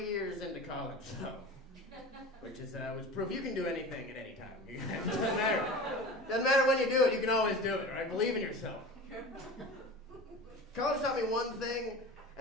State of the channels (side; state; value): both; normal; correlation 0.34